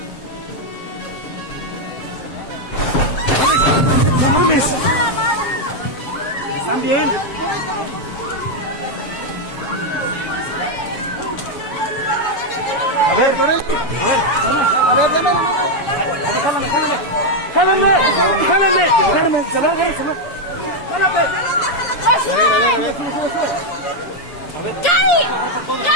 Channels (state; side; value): late; right; 7.2 ms